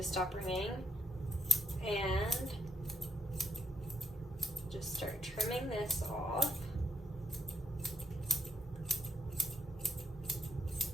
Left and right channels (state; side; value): normal; both; correlation 0.76